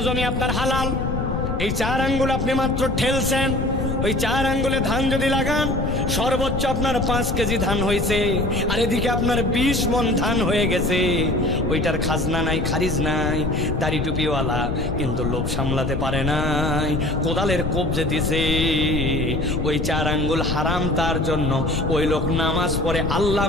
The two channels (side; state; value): left; noise; rumble, 2 dB below the sound